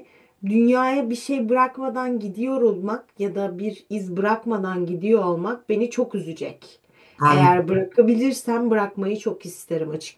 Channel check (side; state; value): both; identical; correlation 1.00